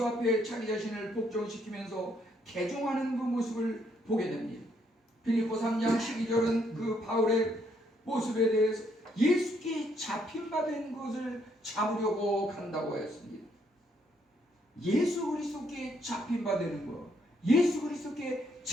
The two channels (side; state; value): both; normal; correlation 0.71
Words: 앞에 자기 자신을 복종시키면서 개종하는 그 모습을 보게 됩니다. 빌립보 3장 12절은 그 바울의 모습에 대해서 예수께 잡힌바된 것을 잡으려고 간다고 했습니다. 예수 그리스도께 잡힌바되는 것, 예수 그리스도께